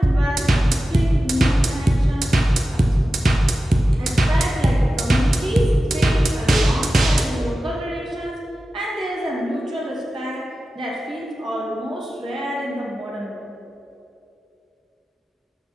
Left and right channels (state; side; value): normal; both; correlation 0.94